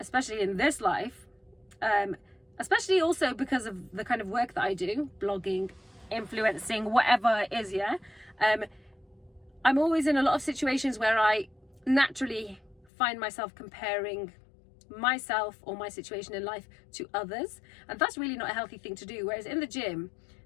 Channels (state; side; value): drops out; right; at 12.9 s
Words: in this life, especially also because of the kind of work that I do, blogging, influencing, whatever it is, yeah, I'm always in a lot of situations where I naturally find myself comparing myself or my situation in life to others, and that's really not a healthy thing to do. Whereas in the gym,